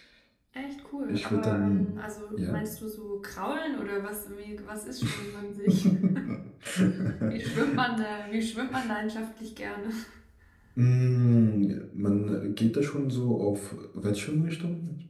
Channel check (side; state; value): both; identical; correlation 1.00